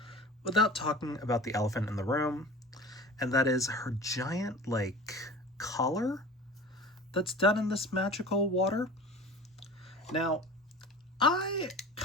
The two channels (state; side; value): normal; both; correlation 0.38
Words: without talking about the elephant in the room, and that is her giant collar that's done in this magical water. Now, I